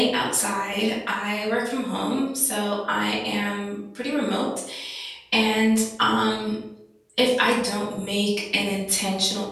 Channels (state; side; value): identical; both; correlation 1.00